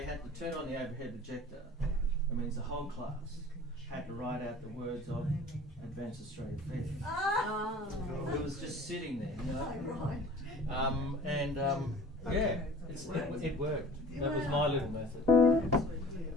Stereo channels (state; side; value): normal; both; correlation 0.45